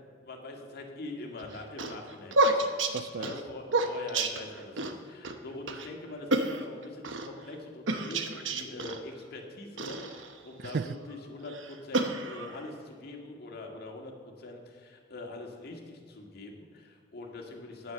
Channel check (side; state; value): both; normal; correlation 0.01